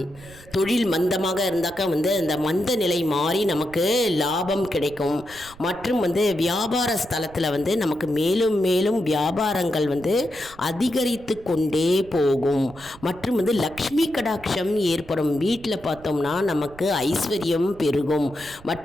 தொழில் மந்தமாக இருந்தாக்கா அந்த மந்த நிலை மாறி நமக்கு லாபம் கிடைக்கும். மற்றும் வியாபார ஸ்தலத்தில் நமக்கு மேலும் மேலும் வியாபாரங்கள் அதிகரித்து கொண்டே போகும். மற்றும் லக்ஷ்மி கடாட்சம் ஏற்படும். வீட்டில் பார்த்தோம்னா நமக்கு ஐஸ்வர்யம் பெருகும்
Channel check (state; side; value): noise; right; rumble, 21 dB below the sound